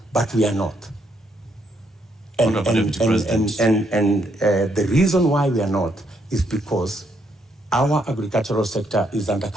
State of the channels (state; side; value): normal; both; correlation 0.74